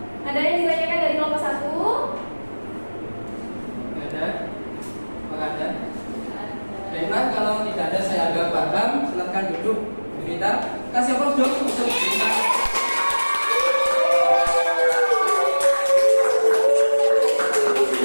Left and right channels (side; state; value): both; inverted; correlation -1.00